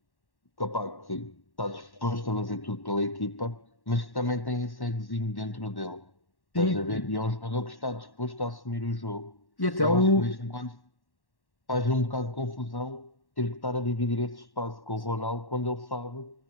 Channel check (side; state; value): right; late; 1.1 ms